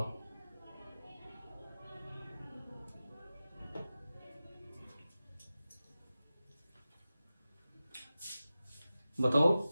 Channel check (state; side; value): inverted; both; correlation -0.95